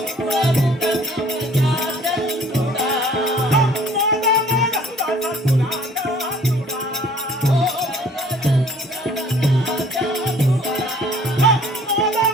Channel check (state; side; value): normal; both; correlation 0.55